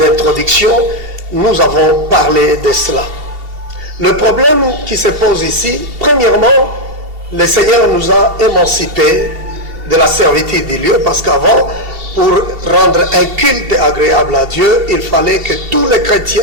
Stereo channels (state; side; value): late; left; 2.7 ms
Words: nous avons parlé de cela. Le problème qui se pose ici, premièrement, le Seigneur nous a émancipés de la servitude des lieux, parce qu'avant, pour rendre un culte agréable à Dieu, il fallait que tous les chrétiens,